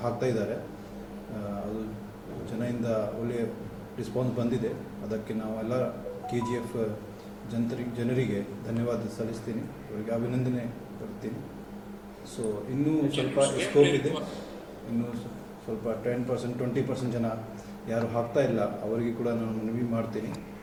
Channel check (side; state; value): both; identical; correlation 1.00